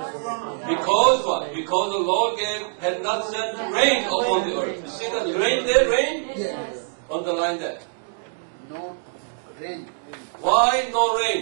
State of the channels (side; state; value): left; silent; digital silence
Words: Because what? Because the Lord had not sent rain upon the earth. You see the rain there, rain? Yes. Underline that. No rain. Why no